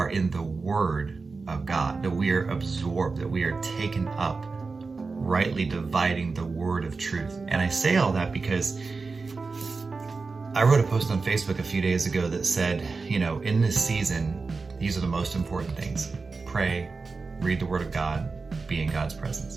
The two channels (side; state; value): left; quieter; 4.2 dB